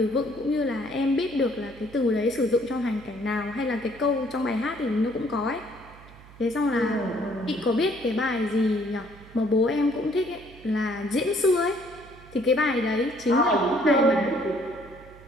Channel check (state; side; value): noise; right; hum, 21 dB below the sound